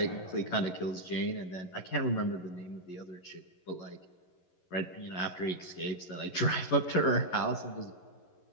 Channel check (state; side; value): late; right; 11 ms